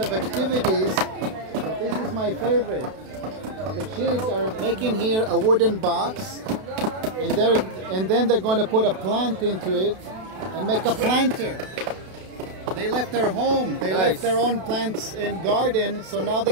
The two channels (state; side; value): late; left; 32 ms